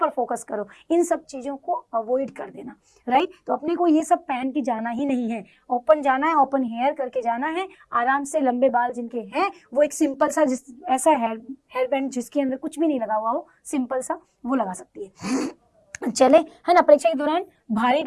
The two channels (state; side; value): identical; both; correlation 1.00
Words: फोकस करो, इन सब चीजों को अवॉइड कर देना, राइट। तो अपने को ये सब पहन के जाना ही नहीं है, ओपन जाना है, ओपन हेयर करके जाना है, आराम से। लंबे बाल जिनके हैं वो एक सिंपल सा ऐसा हेयर बैंड जिसके अंदर कुछ भी नहीं लगा हुआ हो, सिंपल सा वो लगा सकती है। चले, है ना। परीक्षा के दौरान भारी